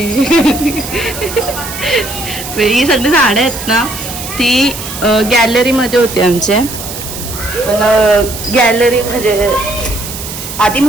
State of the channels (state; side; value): noise; right; hiss, 9 dB below the sound